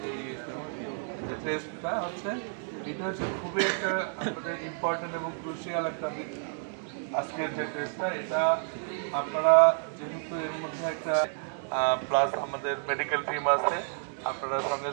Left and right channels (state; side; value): silent; left; digital silence